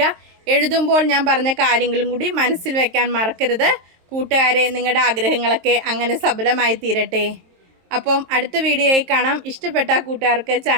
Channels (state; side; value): late; left; 23 ms